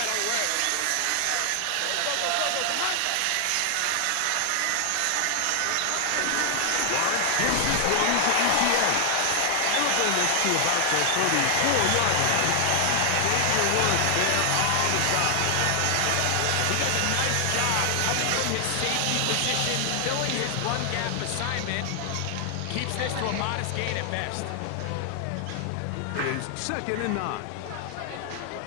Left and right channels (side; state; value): both; different; correlation 0.00